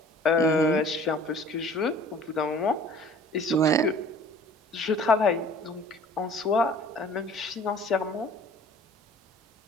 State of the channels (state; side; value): normal; both; correlation 0.50